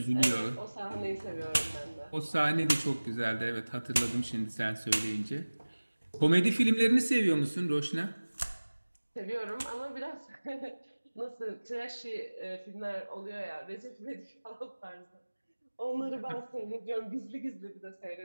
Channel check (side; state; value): both; inverted; correlation -1.00